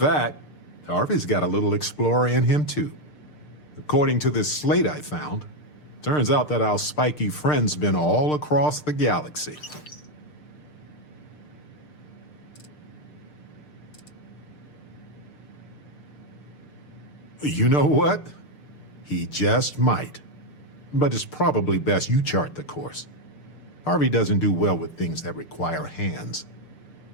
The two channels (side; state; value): right; late; 6.6 ms